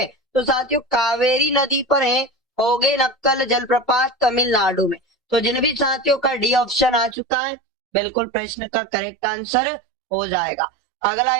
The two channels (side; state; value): left; drops out; at 7.2 s